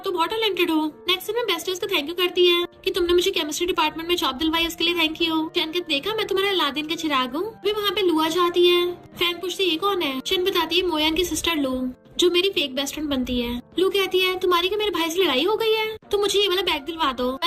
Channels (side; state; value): both; identical; correlation 1.00